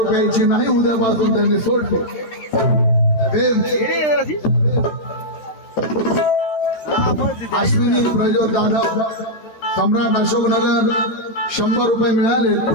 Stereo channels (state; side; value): late; right; 13 ms